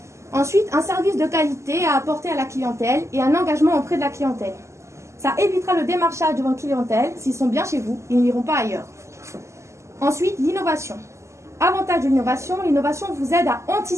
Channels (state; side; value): late; left; 0.14 ms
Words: Ensuite, un service de qualité à apporter à la clientèle et un engagement auprès de la clientèle. Ça évitera le démarchage de votre clientèle. S'ils sont bien chez vous, ils n'iront pas ailleurs. Ensuite, l'innovation. Avantage de l'innovation, l'innovation vous aide à